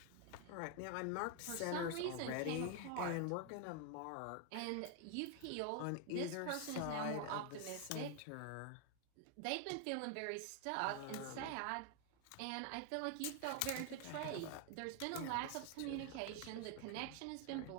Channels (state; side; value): different; both; correlation 0.00